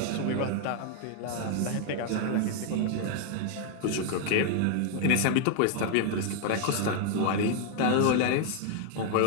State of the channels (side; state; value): both; different; correlation 0.00